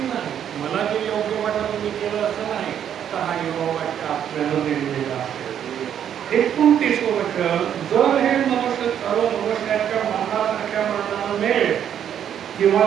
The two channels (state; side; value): quieter; left; 9.4 dB